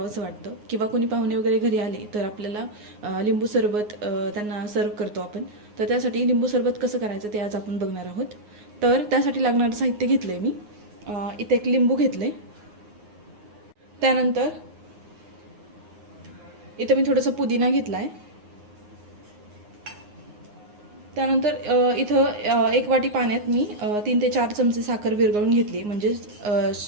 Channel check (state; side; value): late; left; 9.6 ms